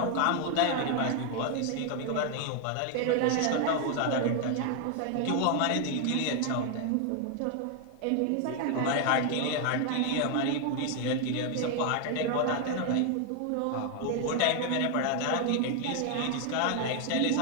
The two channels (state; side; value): different; both; correlation 0.00